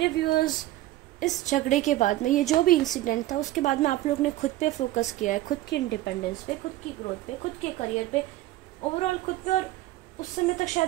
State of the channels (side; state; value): left; quieter; 16.0 dB